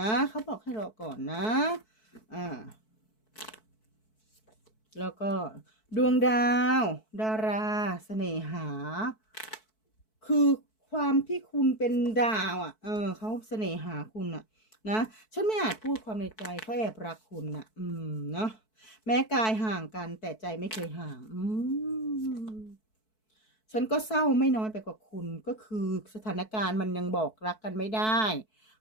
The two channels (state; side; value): late; right; 4.6 ms